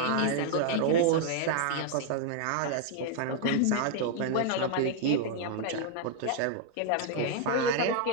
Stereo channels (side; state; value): both; different; correlation 0.00